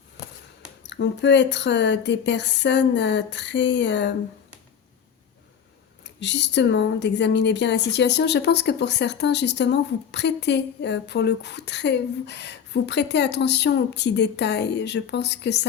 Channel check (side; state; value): right; quieter; 7.8 dB